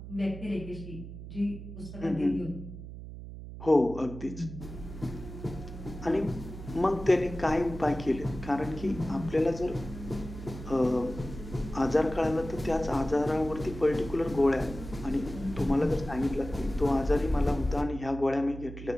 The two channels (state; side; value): noise; right; hum, 11 dB below the sound